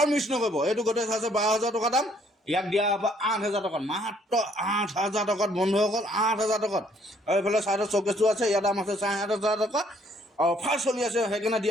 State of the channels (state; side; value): normal; both; correlation 0.64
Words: মিছ নকৰিব। এইটো গোটেই আছে 12,000 টকা দাম, ইয়াক দিয়া হ'ব 8,000 টকাত, মাত্ৰ 8,000 টকাত বন্ধুসকল, 8,000 টকাত। আৰু এইফালে চাইডত চকেছটো আছে, ইয়াৰ দাম আছে 7,500 টকা। অফাৰ চলি আছে, সেইকাৰণে